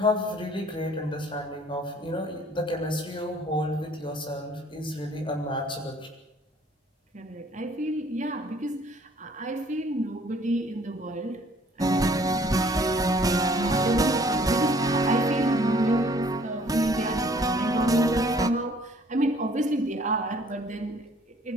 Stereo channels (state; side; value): normal; both; correlation 0.58